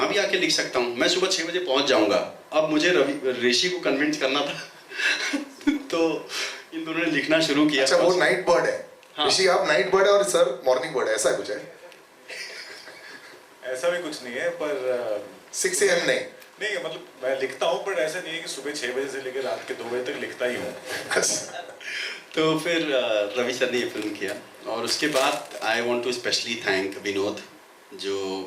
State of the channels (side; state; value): both; identical; correlation 1.00